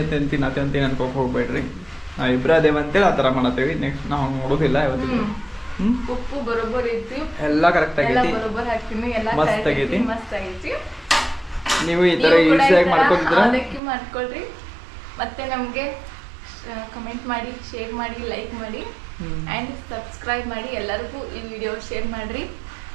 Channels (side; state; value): left; drops out; at 13.8 s